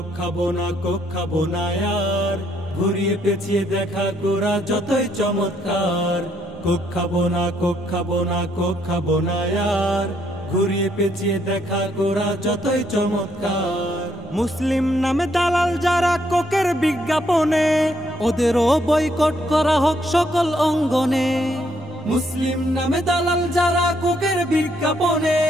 খাবো না কোক খাবো না यार, ঘুরিয়ে পেঁচিয়ে দেখা কোরা যতই চমৎকার। কোক খাবো না কোক খাবো না কোক খাবো না यार, ঘুরিয়ে পেঁচিয়ে দেখা কোরা যতই চমৎকার। মুসলিম নামে দালাল যারা কোকের বিজ্ঞাপনে, ওদেরও বয়কট করা হোক সকল অঙ্গনে। মুসলিম নামে দালাল যারা কোকের বিজ্ঞাপনে,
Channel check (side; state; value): both; normal; correlation 0.72